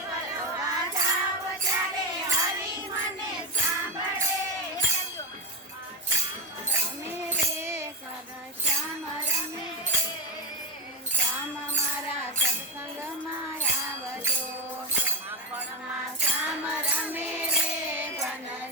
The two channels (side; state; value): both; normal; correlation 0.17